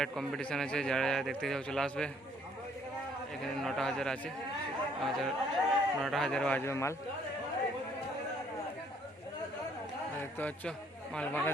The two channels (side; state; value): both; normal; correlation 0.64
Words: কম্পিটিশান আছে, যারা যারা দেখতে যাও চলে আসবে। এখানে 9,000 আছে, 9,000 বাজবে মাল। দেখতে পাচ্ছ মাল বাঁধা